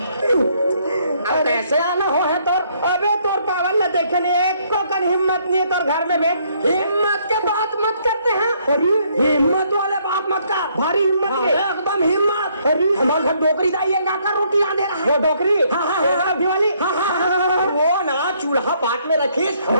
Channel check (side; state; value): both; inverted; correlation -0.68